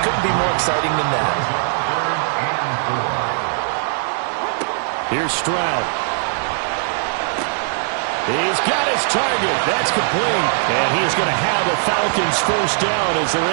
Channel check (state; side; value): silent; left; 62 dB below the other